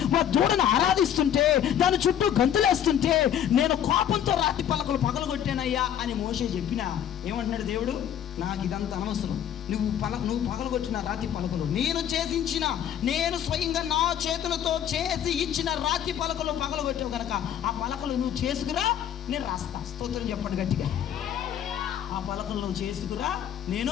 వారు దూడను ఆరాధిస్తుంటే, దాని చుట్టూ గంతులేస్తుంటే నేను కోపంతో రాతి పలకలు పగలగొట్టానయ్యా అని మోషే చెప్పినా ఏమంటున్నాడు దేవుడు, నాకు ఇదంతా అనవసరం. నువ్వు పగలగొట్టిన రాతి పలకలు నేను స్వయంగా నా చేతులతో చేసి ఇచ్చిన రాతి పలకలు పగలగొట్టావు కనుక ఆ పలకలు నువ్వు చేసుకురా, నేను రాస్తా. స్తోత్రం చెప్పండి గట్టిగా. ఆ పలకలు నువ్వు చేసుకురా,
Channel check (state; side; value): quieter; right; 9.9 dB